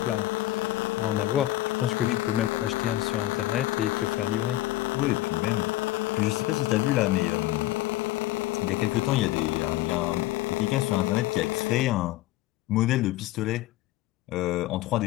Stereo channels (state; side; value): quieter; right; 16.3 dB